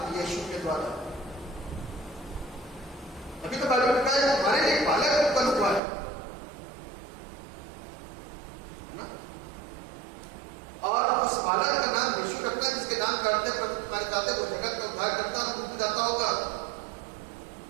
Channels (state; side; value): drops out; left; at 5.8 s